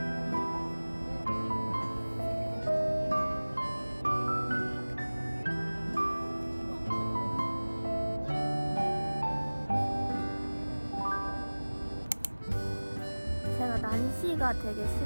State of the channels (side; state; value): both; inverted; correlation -1.00